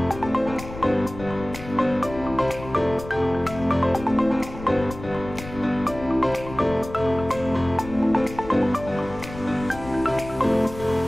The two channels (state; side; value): noise; left; rumble, 13 dB below the sound